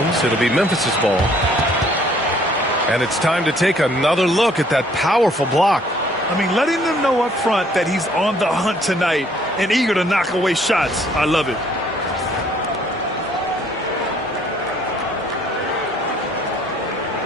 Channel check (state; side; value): normal; both; correlation 0.61